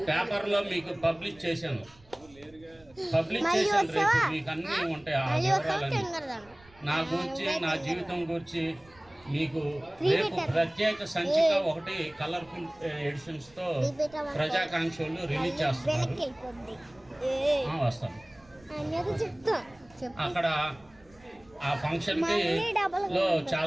పేపర్లో మీకు పబ్లిష్ చేశాను. రేపు మీకు అన్నీ ఉంటాయి. ఆ వివరాలన్నీ నా గురించి, నా జీవితం గురించి మీకు రేపు ప్రత్యేక సంచిక ఒకటి కలర్ఫుల్ ఎడిషన్స్తో ప్రజాకాంక్షలు రిలీజ్ చేస్తున్నారు. వస్తాను. అక్కడ ఆ ఫంక్షన్కి లో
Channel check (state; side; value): noise; right; rumble, 27 dB below the sound